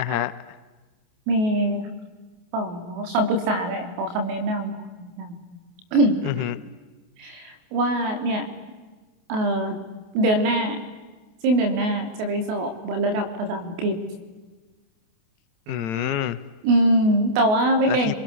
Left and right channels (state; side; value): late; left; 28 ms